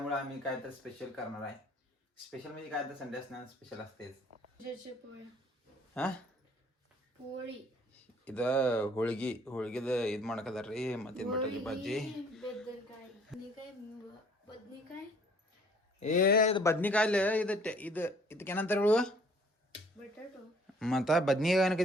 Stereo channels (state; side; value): normal; both; correlation 0.57